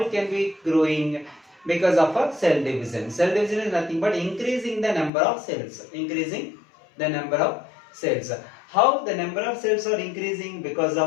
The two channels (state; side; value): drops out; right; at 5.1 s